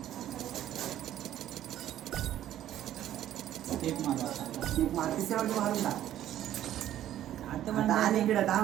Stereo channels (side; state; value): left; quieter; 12.1 dB